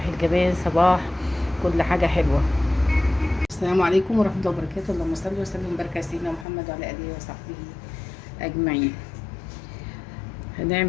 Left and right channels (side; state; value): right; drops out; at 6.5 s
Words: الجمال، صباح كل حاجة حلوة. السلام عليكم ورحمة الله وبركاته. اللهم صل وسلم وبارك على سيدنا محمد وعلى آله وصحبه أجمعين.